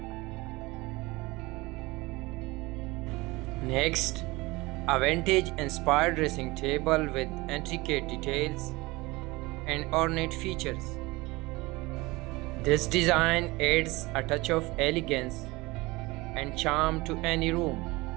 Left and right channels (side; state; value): left; quieter; 22.2 dB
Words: Next, a vintage inspired dressing table with intricate details and ornate features. This design adds a touch of elegance and charm to any room.